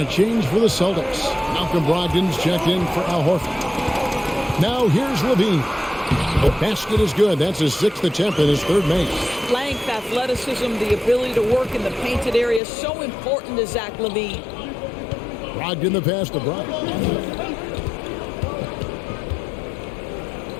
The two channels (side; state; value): right; drops out; at 12.6 s